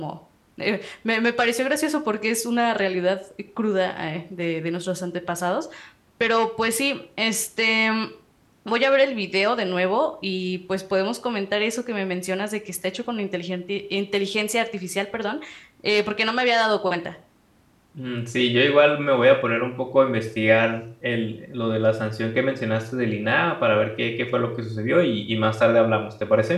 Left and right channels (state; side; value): identical; both; correlation 1.00